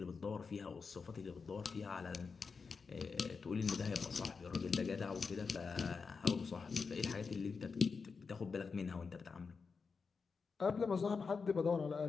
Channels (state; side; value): quieter; right; 5.1 dB